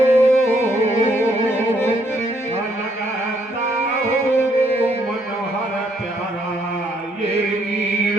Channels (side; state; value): both; normal; correlation 0.71